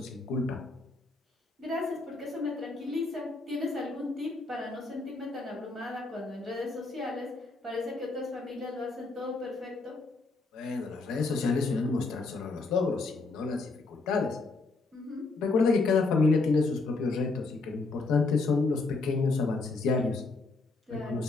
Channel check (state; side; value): quieter; right; 3.6 dB